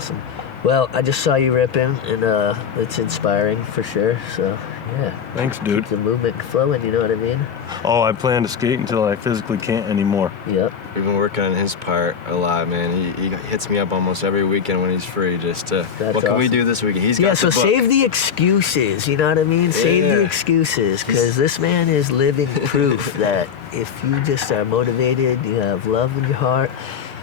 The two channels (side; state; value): right; quieter; 7.2 dB